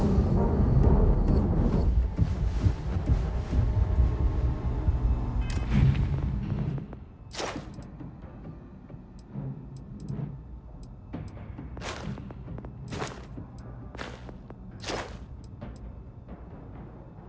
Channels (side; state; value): both; identical; correlation 1.00